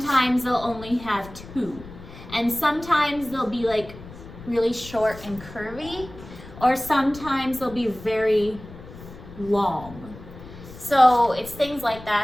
they'll only have 2. And sometimes they'll be like really short and curvy, or sometimes they'll be very long. So it's things like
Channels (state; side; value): noise; left; rumble, 16 dB below the sound